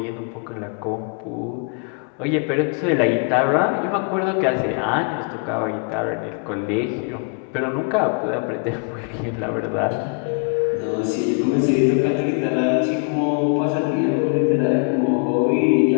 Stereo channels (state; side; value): quieter; right; 38.6 dB